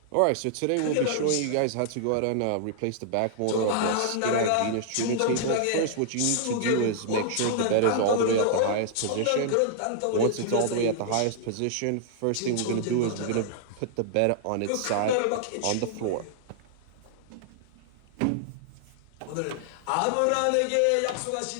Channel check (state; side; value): different; both; correlation -0.01